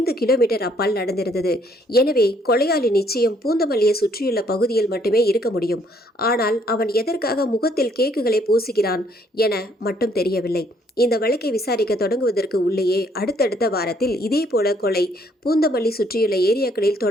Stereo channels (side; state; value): both; normal; correlation 0.66